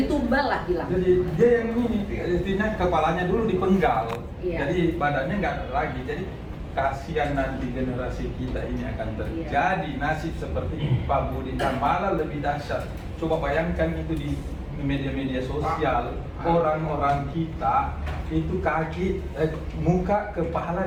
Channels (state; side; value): identical; both; correlation 1.00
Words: tumbal lah bilang. Jadi dia yang ini, artinya kepalanya dulu dipenggal, Iya. jadi badannya nggak ada lagi. Jadi kasihan nanti generasi kita ini akan terjadi nasib seperti Pak Budi, dan malah lebih dahsyat. Coba bayangkan itu di media-media sosial, orang-orang kita itu muka